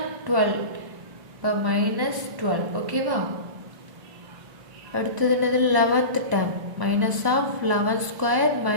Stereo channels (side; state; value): left; late; 1.0 ms